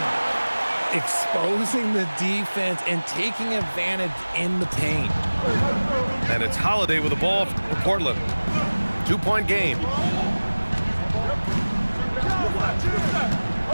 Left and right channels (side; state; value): both; inverted; correlation -1.00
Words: Exposing the defense and taking advantage in the paint. And it's Holiday with the ball for Portland. 2-point game.